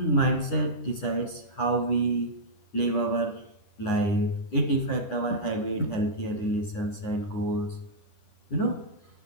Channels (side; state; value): right; late; 10 ms